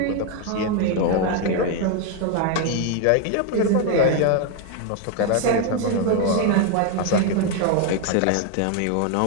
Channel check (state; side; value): different; both; correlation 0.01